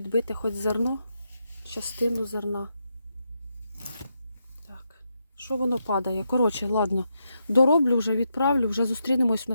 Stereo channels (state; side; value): inverted; both; correlation -0.83